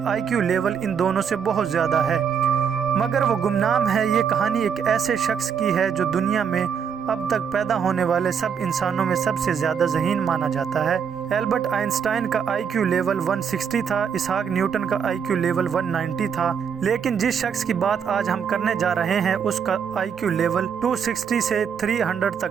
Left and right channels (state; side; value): quieter; left; 7.2 dB